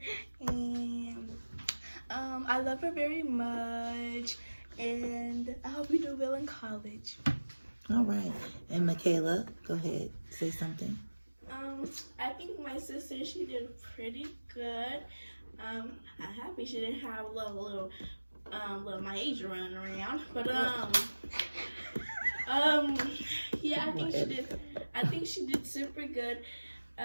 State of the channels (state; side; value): inverted; both; correlation -1.00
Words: and I love her very much. And I hope you do well in college. All right. And Michaela, go ahead, say something. I think my sister, she did pretty good. I'm happy she didn't have a little Myasia running around, but yeah, I think she did super good.